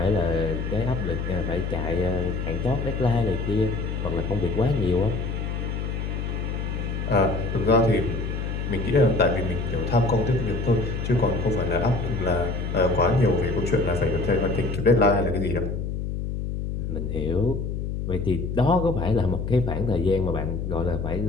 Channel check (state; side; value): noise; left; hum, 3 dB below the sound